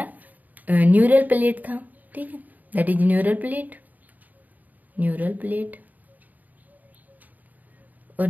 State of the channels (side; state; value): left; late; 0.081 ms